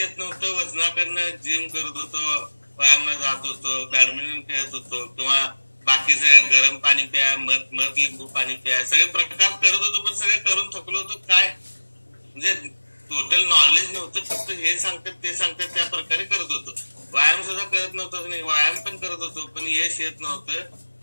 नव्हतं. वजनाकडनं जिम करत होतो, व्यायामला जात होतो, बॅडमिंटन खेळत होतो किंवा बाकीचे गरम पाणी प्या, मध लिंबू पाणी प्या, सगळे प्रकार करत होतो. पण सगळे करून थकलो होतो. काय म्हणजे टोटल नॉलेज नव्हतं. फक्त हे सांगतात ते सांगतात त्या प्रकारे करत होतो. व्यायाम सुद्धा करत नव्हतं. नाही, व्यायाम पण करत होतो पण यश येत नव्हतं.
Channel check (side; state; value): both; inverted; correlation -1.00